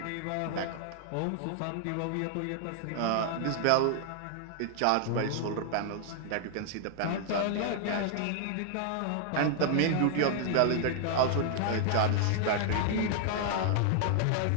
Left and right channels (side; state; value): both; different; correlation 0.00